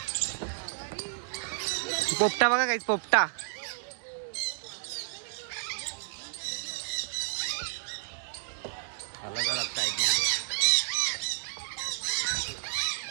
पोपटा बघा काहीच पोपटा.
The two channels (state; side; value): silent; left; digital silence